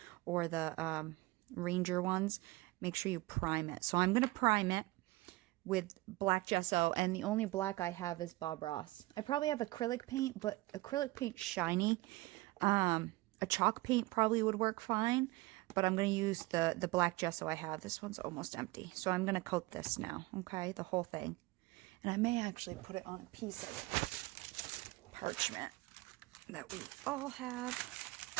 or the Ranger ones, make sure you prime it. So I'm going to prime it with black gesso, and the only black I have is Bob Ross. I probably have acrylic paint, but acrylic paint's shiny. A chalk paint probably would work fine, but I'm going to use the black gesso I have. This one's almost empty. So I'm going to coat this now, okay, the whole thing. And I may actually put it on a piece of parchment that we all have,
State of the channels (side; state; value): left; quieter; 20.6 dB